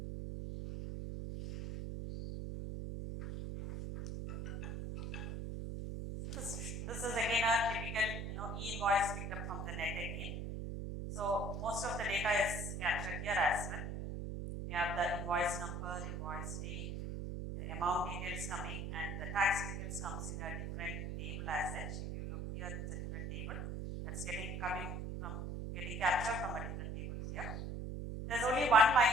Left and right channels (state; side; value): noise; right; hum, 5 dB below the sound